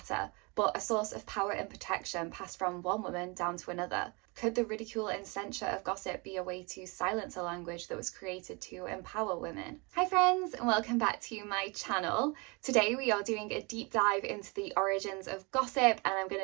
but a source of power and protection passed from one woman down to another? Could the ridicule and censure of gossip be a way to silence a language that was created to empower women? Hi friends, and welcome back to my channel. Today we are doing a deep dive into the origins of gossip, and I'm going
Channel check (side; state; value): left; quieter; 29.1 dB